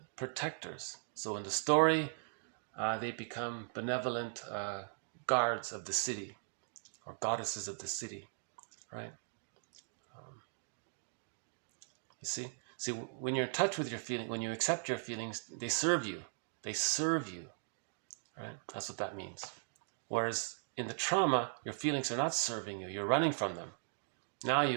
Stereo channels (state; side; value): silent; left; digital silence